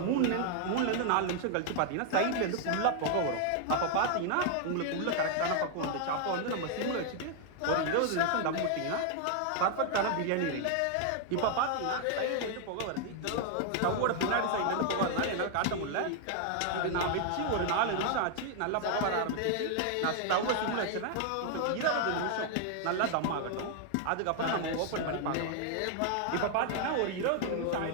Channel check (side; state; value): both; different; correlation 0.00